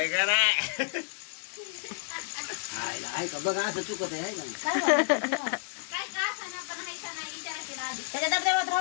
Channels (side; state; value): right; silent; digital silence